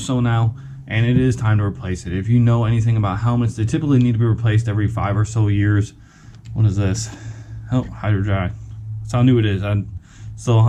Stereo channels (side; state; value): both; identical; correlation 1.00